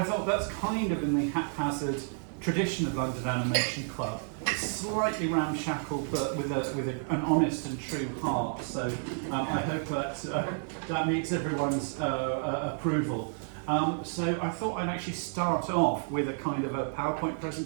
thought that's kind of in the haphazard tradition of London Animation Club, slightly ramshackle, but with an honest and true heart. So I hope that meets everyone's approval. So I thought I'd actually start off with a kind of a PowerPoint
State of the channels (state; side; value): silent; left; 57 dB below the other